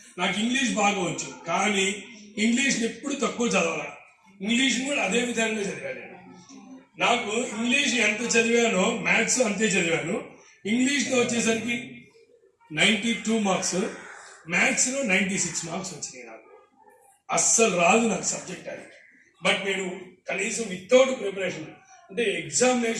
నాకు ఇంగ్లీష్ బాగా వచ్చు, కానీ ఇంగ్లీష్ని ఎప్పుడు తక్కువ చదవాలి. ఇంగ్లీష్ని కూడా అదే విధంగా చదివాను. నాకు ఇంగ్లీష్ ఎంత చదివానో మ్యాథ్స్ అంతే చదివాను. ఇంగ్లీష్లో వచ్చేసరికి 92 మార్క్స్, మ్యాథ్స్లో 96 మార్క్స్ వచ్చినాయి. నాకు అస్సలు రాదు నాకు సబ్జెక్ట్ అది. బట్ నేను కనీసం వితౌట్ ప్రిపరేషన్ అంటే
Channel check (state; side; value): identical; both; correlation 1.00